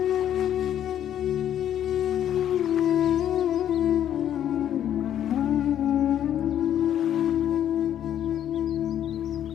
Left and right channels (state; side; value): quieter; right; 10.5 dB